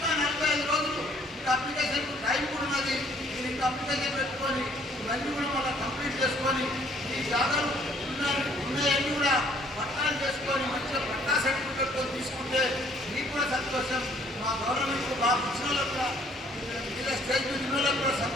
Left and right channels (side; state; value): both; normal; correlation 0.62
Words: 45 రోజులు ఇంకా అప్లికేషన్ టైం కూడా ఉన్నది. మీరు ఇంకా అప్లికేషన్ పెట్టుకొని ఇవన్నీ కూడా మళ్ళీ కంప్లీట్ చేసుకొని ఈ జాగాలు ఉన్నాయన్నీ కూడా పట్టాలు చేసుకొని మంచిగా పట్టా సర్టిఫికెట్తో తీసుకుంటే మీకు కూడా సంతోషం, మా గవర్నమెంట్ బాగా ఇచ్చిన వాళ్ళకు కూడా ఇలా స్టేజ్ మీద వాళ్ళకు కూడా